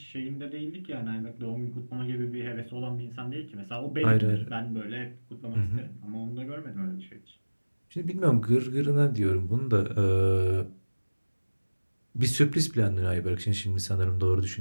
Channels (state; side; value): inverted; both; correlation -1.00